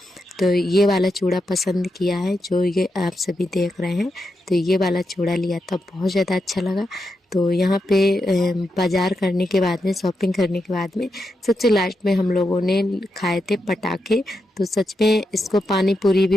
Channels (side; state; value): both; normal; correlation 0.86